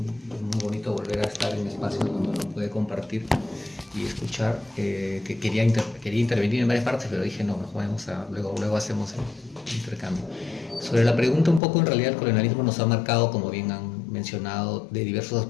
bonito volver a estar en espacios donde uno puede compartir y escuchar. Que quería intervenir en varias partes, pero dije no, luego hacemos el intercambio. Sobre la pregunta un poco, en realidad el colonialismo nos ha marcado, como bien han mencionado, de diversos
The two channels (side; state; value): right; drops out; at 11.6 s